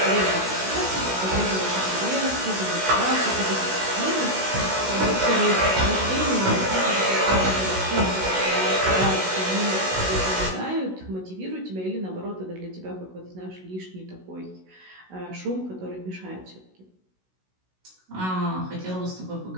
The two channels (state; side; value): late; left; 16 ms